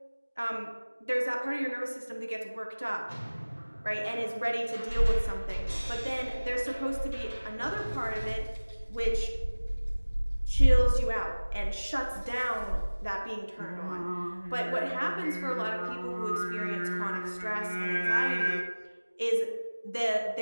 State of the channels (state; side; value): inverted; both; correlation -1.00